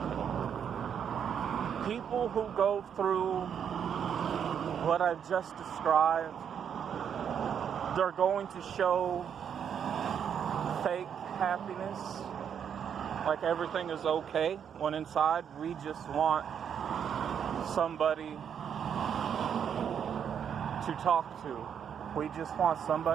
People who go through what I've just described, they're going to show fake happiness, like everything is okay, when inside we just want somebody to talk to. We just want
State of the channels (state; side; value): quieter; left; 8.1 dB